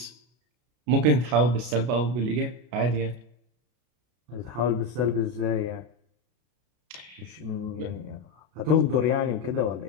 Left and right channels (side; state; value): left; late; 33 ms